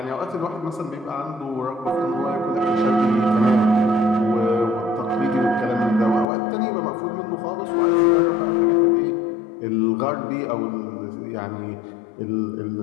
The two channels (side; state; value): right; drops out; at 6.2 s